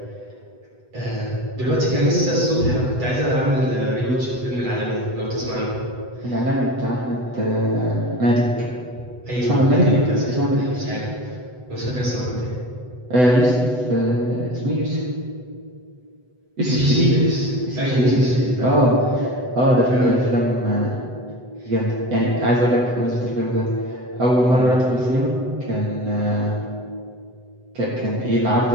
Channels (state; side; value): late; left; 8.0 ms